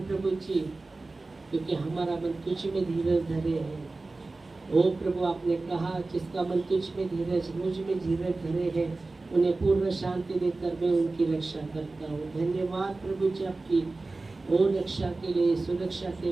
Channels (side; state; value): left; quieter; 3.4 dB